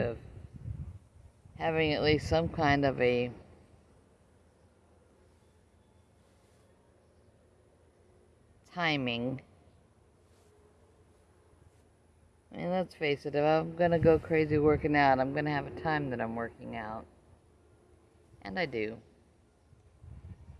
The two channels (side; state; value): both; identical; correlation 1.00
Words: having at least some kind of a timing. I mean, let's face it, if I'm going to go crazy working out, I'm going to have a time that I'm working out. And I do.